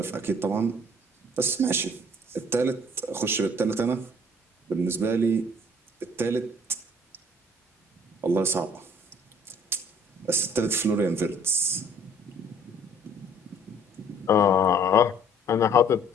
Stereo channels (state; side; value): normal; both; correlation 0.56